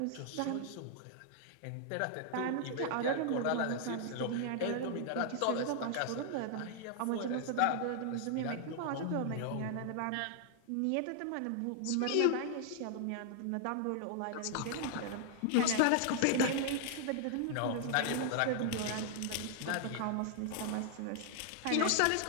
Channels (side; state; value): both; different; correlation 0.00